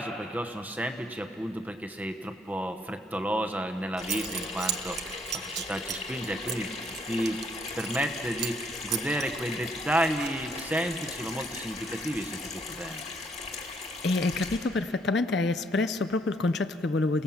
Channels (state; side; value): normal; both; correlation 0.68